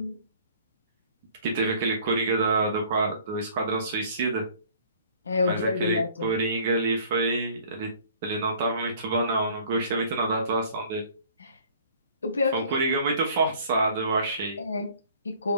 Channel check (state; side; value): inverted; both; correlation -0.54